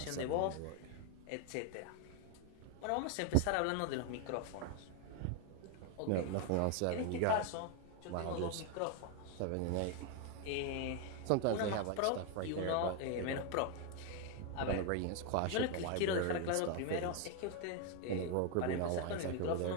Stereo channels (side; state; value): both; different; correlation 0.01